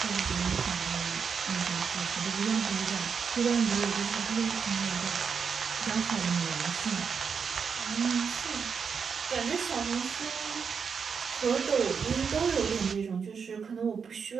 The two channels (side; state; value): left; quieter; 6.2 dB